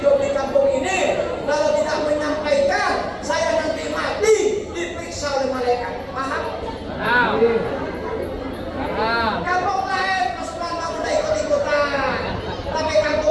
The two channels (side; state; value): both; identical; correlation 1.00